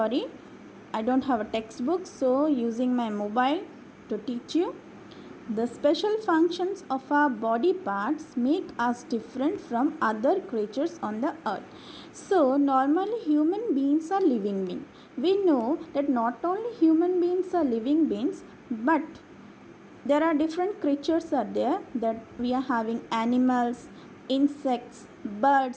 I don't have a textbook, so using my mobile to teach you. The special functions of our body parts make us different from other creatures on the earth. So normally human beings are living beings. We know that not only human beings are living beings, but there are different creatures are there, that we are having animals, insects,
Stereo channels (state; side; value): identical; both; correlation 1.00